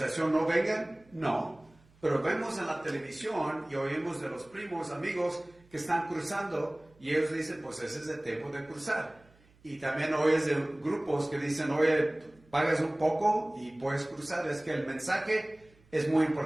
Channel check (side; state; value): right; noise; hum, 30 dB below the sound